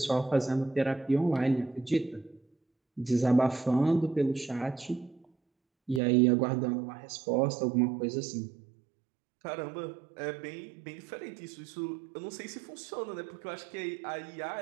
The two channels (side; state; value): left; drops out; at 6.0 s